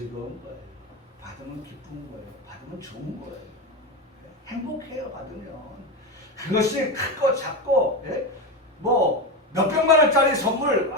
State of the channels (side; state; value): both; normal; correlation 0.16